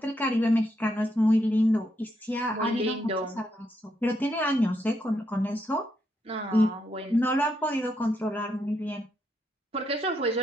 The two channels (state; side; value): normal; both; correlation 0.79